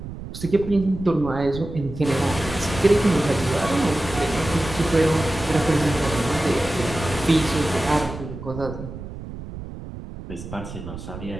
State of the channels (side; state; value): right; noise; rumble, 11 dB below the sound